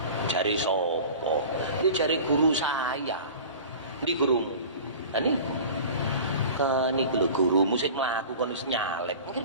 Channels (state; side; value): inverted; both; correlation -0.39